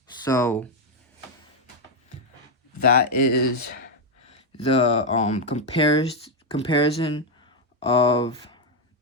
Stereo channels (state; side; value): normal; both; correlation 0.02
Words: So that is the comparison of